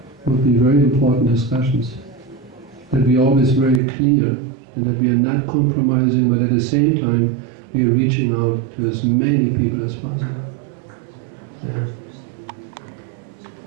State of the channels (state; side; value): drops out; left; at 3.8 s